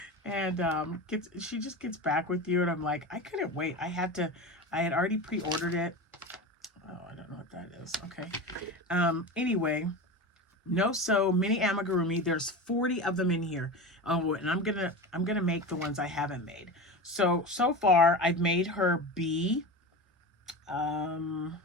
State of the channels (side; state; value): both; normal; correlation 0.27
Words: and she just gets back with you. And I'm like, I couldn't wait. I had already pre-ordered it. Oh, I don't know what that is. Okay. Anyway, No Sew mini amigurumi. There's 40 of them in here. Oh, and I'm gonna make the ones I haven't made. So far I've made her bee.